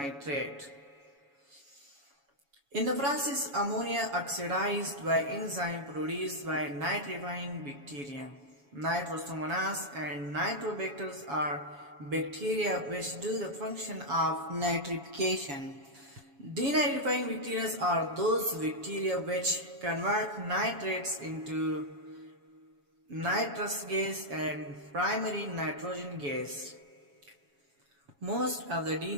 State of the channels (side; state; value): left; late; 7.1 ms